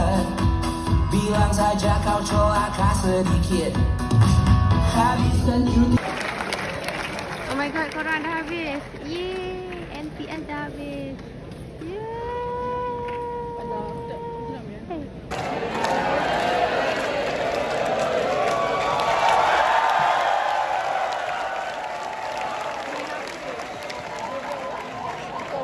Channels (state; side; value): identical; both; correlation 1.00